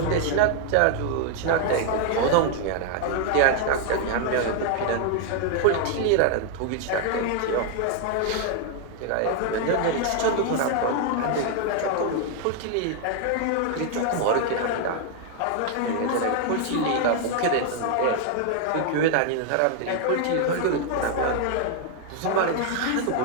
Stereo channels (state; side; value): different; both; correlation 0.00